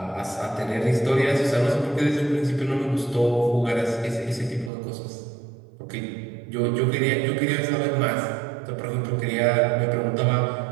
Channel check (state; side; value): drops out; left; at 4.7 s